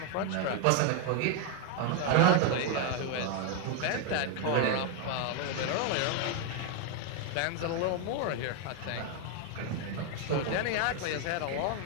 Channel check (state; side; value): different; both; correlation 0.01